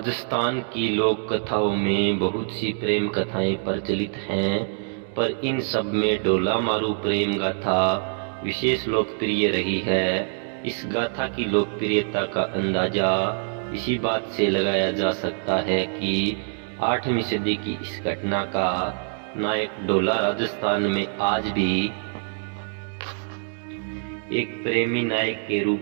की लोक कथाओं में बहुत सी प्रेम कथाएं प्रचलित हैं, पर इन सब में डोला मारू प्रेम गाथा विशेष लोकप्रिय रही है। इस गाथा की लोकप्रियता का अंदाजा इसी बात से लगाया जा सकता है कि 8वीं सदी की इस घटना का नायक डोला राजस्थान में आज भी एक प्रेमी नायक के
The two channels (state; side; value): silent; left; 62 dB below the other